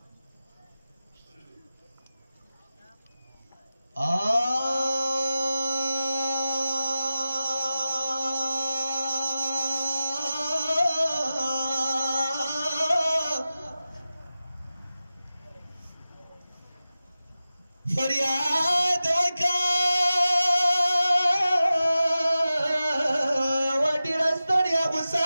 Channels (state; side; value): inverted; both; correlation -0.94